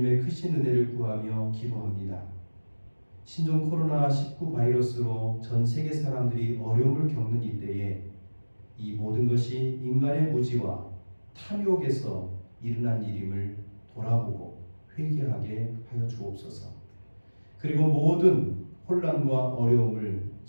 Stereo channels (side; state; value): both; inverted; correlation -1.00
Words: 크신 은혜를 구하며 기도합니다. 신종 코로나19 바이러스로 전 세계 사람들이 어려움을 겪는 이때에 이 모든 것이 인간의 무지와 탐욕에서 일어난 일임을 돌아보고 회개하게 하여 주옵소서. 그리고 모든 혼란과 어려움을